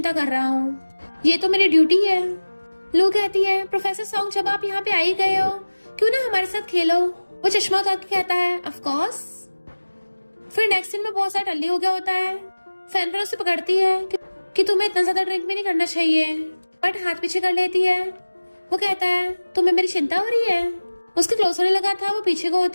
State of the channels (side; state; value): both; inverted; correlation -1.00